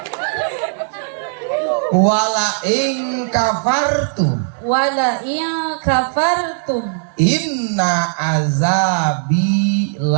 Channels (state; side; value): silent; left; digital silence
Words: wala in kafartum wala in kafartum inna azabi